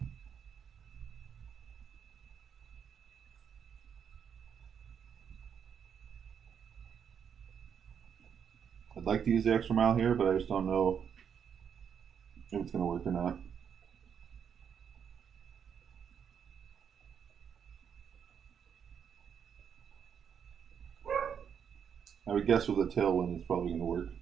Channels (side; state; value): left; quieter; 7.6 dB